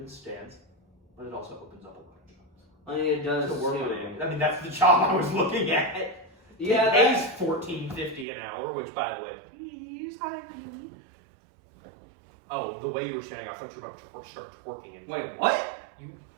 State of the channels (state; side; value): drops out; left; at 8.2 s